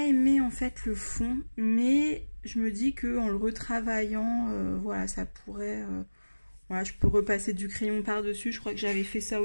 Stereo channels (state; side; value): inverted; both; correlation -1.00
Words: aimé en fait le fond, mais je me dis que en le retravaillant, voilà, ça pourrait, voilà, je peux repasser du crayon par-dessus. Je crois que j'avais fait ça